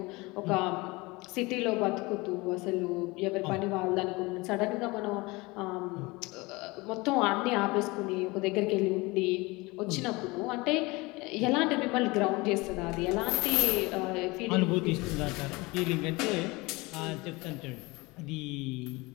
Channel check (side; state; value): right; quieter; 23.7 dB